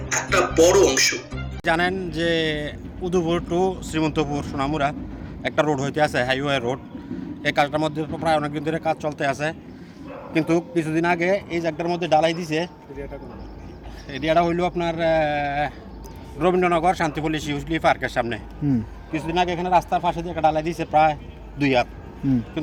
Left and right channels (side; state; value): both; identical; correlation 1.00